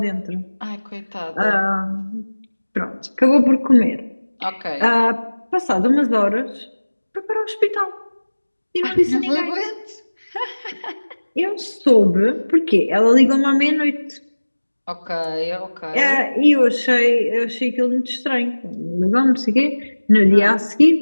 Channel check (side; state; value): both; inverted; correlation -1.00